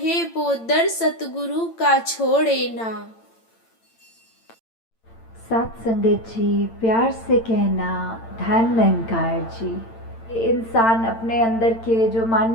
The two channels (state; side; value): late; right; 8.9 ms